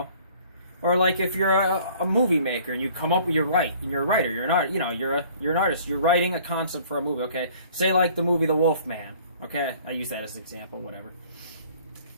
Or like if you're a movie maker and you come up with, you're a writer, you're not, you know, you're an artist, you're writing a concept for a movie, okay? Say like the movie The Wolf Man, okay? I use that as an example, whatever.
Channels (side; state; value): both; inverted; correlation -0.54